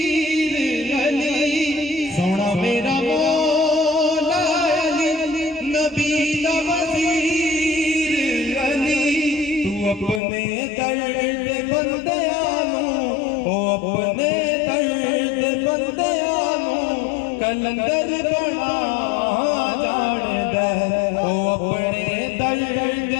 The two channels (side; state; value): right; drops out; at 10.2 s